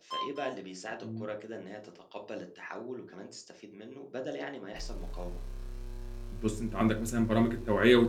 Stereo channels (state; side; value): identical; both; correlation 1.00